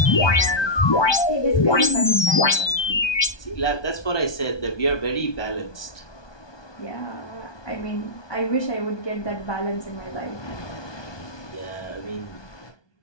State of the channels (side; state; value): right; late; 1.2 ms